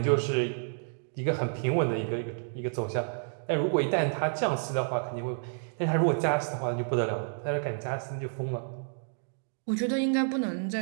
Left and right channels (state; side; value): silent; left; digital silence